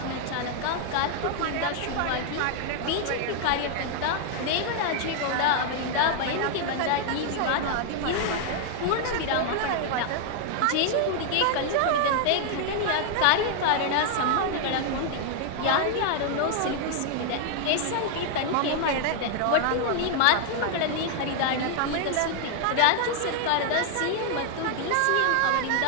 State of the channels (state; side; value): different; both; correlation 0.00